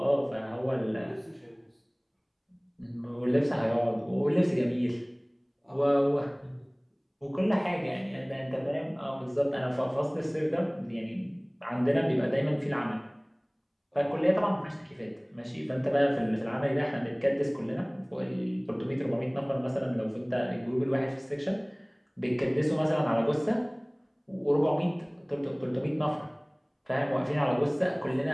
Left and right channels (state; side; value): identical; both; correlation 1.00